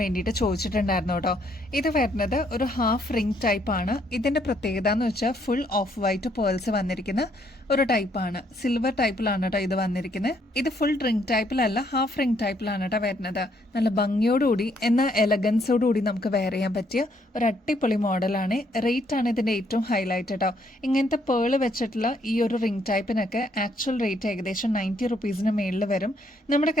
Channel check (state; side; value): normal; both; correlation 0.70